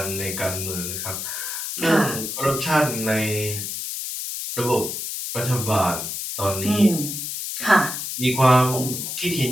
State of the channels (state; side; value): noise; left; hiss, 5 dB below the sound